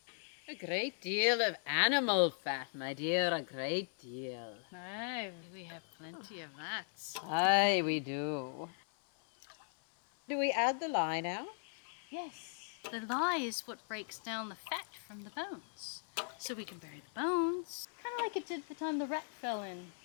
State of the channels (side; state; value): right; silent; 52 dB below the other